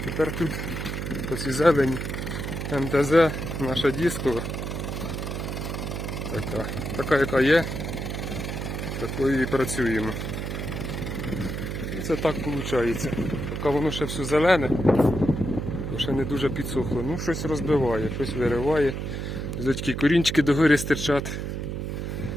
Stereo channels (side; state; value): right; noise; hum, 4 dB below the sound